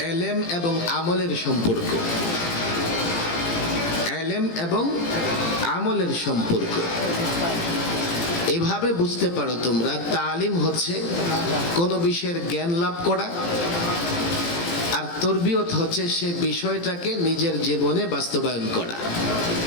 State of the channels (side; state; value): right; late; 18 ms